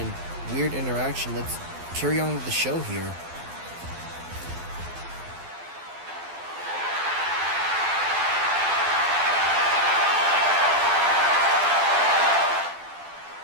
weird interaction, let's carry on with the show here.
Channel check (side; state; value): left; late; 12 ms